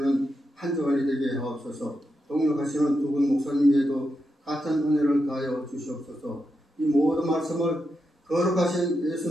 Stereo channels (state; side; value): normal; both; correlation 0.86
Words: 한 주간이 되게 하옵소서. 동역하시는 두 분 목사님에도 같은 은혜를 다하여 주시옵소서. 이 모든 말씀을 거룩하신